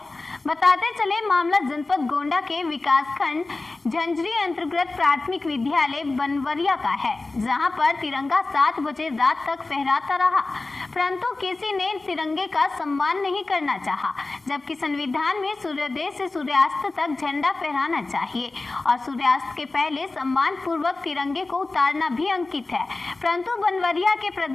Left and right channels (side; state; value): right; quieter; 3.3 dB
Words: बताते चले मामला जनपद गोंडा के विकासखंड झंझरी अंतर्गत प्राथमिक विद्यालय बनवरिया का है, जहां पर तिरंगा 7 बजे रात तक फहराता रहा, परंतु किसी ने तिरंगे का सम्मान नहीं करना चाहा, जबकि संविधान में सूर्योदय से सूर्यास्त तक झंडा फहराना चाहिए और सूर्यास्त के पहले सम्मान पूर्वक तिरंगे को उतारना भी अंकित है। परंतु बनवरिया के